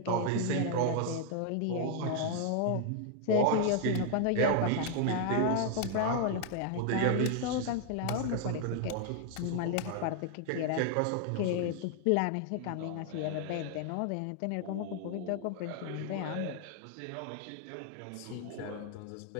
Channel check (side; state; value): both; different; correlation 0.00